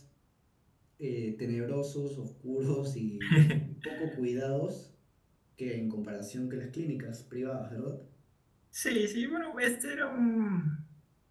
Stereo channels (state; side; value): identical; both; correlation 1.00